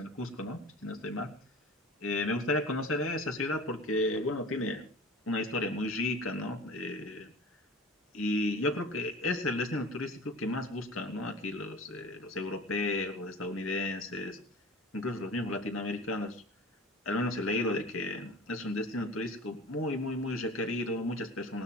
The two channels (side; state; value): both; normal; correlation 0.38